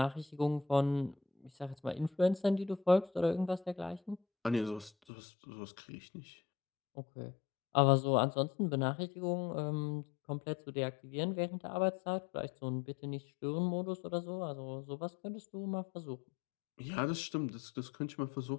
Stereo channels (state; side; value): drops out; right; at 4.9 s